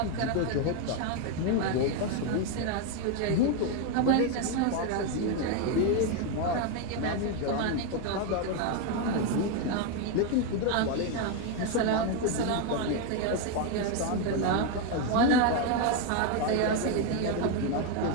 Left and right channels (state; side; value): different; both; correlation 0.02